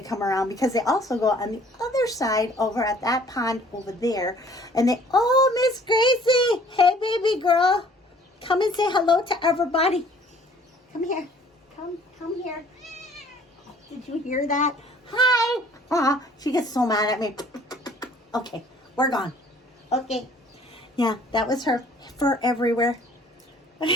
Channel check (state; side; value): normal; both; correlation 0.55